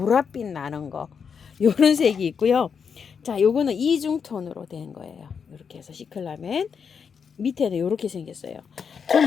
나는 거 요런 색이 있고요. 자, 요거는 이중톤으로 된 거예요. 이렇게 해서 시클라멘 밑에는 이렇게 생겼어요.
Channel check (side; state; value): right; quieter; 6.5 dB